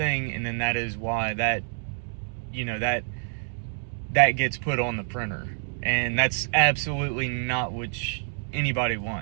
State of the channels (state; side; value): silent; left; digital silence